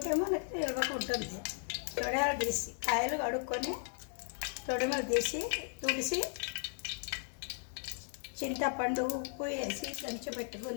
మనకి నిల్వకు ఉంటుంది. తొడిమలు తీసి కాయలు కడుక్కొని తొడిమలు తీసి తుడిసి చింతపండు ఉప్పు వేసి దంచి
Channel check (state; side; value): silent; right; 54 dB below the other